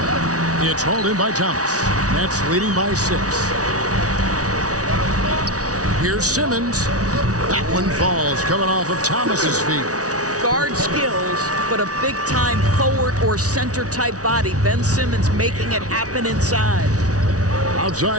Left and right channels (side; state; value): left; late; 0.67 ms